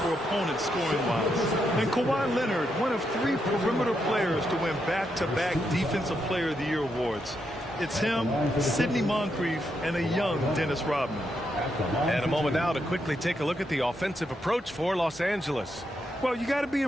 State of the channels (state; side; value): normal; both; correlation 0.81